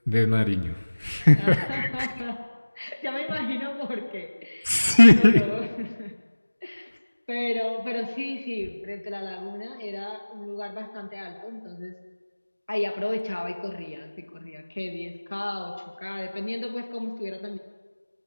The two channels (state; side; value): inverted; both; correlation -1.00